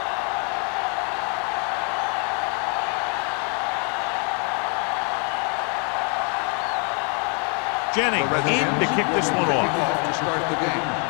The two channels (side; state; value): right; quieter; 38.3 dB